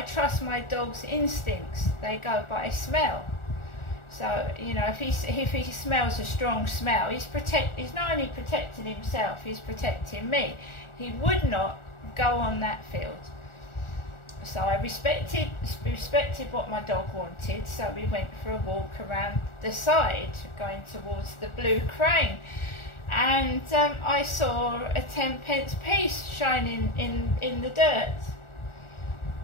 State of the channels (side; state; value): right; late; 1.4 ms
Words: trust my dog's instincts. They go by smell. So you know, if he smells a strong smell, he's not only protecting himself, he's protecting me. He would not go on that field. So I respected what my dog wanted, so we went for a walk around the side, going towards the Blue Crane, and I saw a 10p piece shining in the dirt.